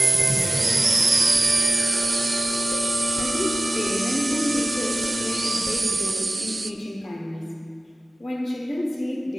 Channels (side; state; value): both; normal; correlation 0.96